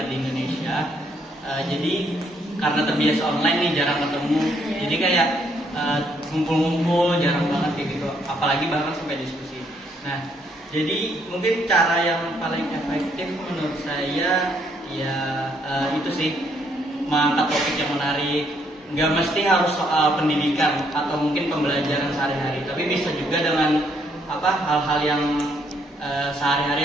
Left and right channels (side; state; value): both; normal; correlation 0.71